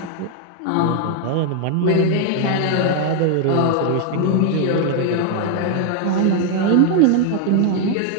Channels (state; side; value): different; both; correlation 0.00